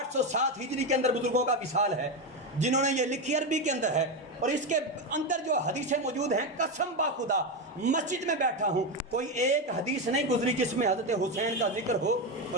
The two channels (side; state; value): both; normal; correlation 0.12